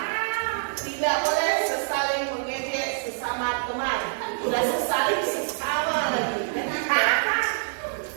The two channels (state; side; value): silent; left; digital silence